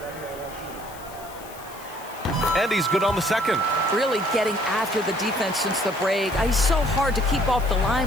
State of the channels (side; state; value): left; noise; hiss, 19 dB below the sound